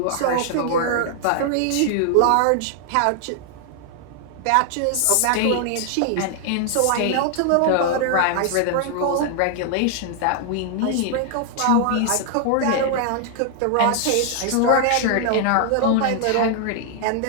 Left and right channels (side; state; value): both; different; correlation 0.00